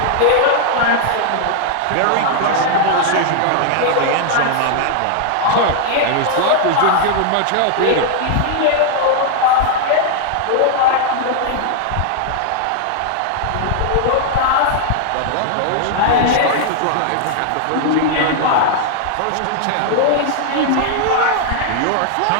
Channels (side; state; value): both; different; correlation 0.00